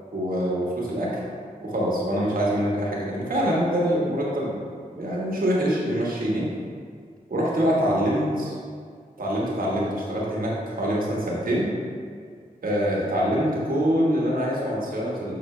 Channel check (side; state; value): both; normal; correlation 0.68